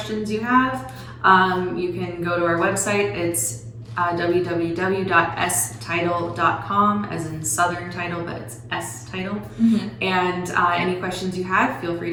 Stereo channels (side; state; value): both; identical; correlation 1.00